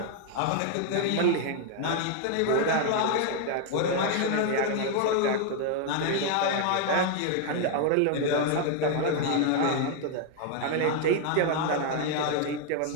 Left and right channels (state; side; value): different; both; correlation 0.00